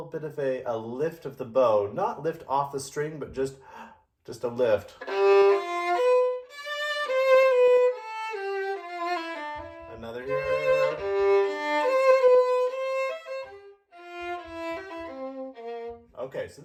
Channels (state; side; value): identical; both; correlation 1.00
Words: bit of a lift of the bow, not lift off the string, but just a lift. Another here. Okay, so